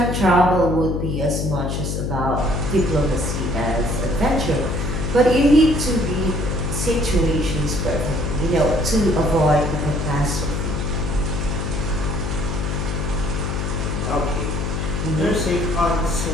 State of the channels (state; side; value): noise; left; hum, 1 dB below the sound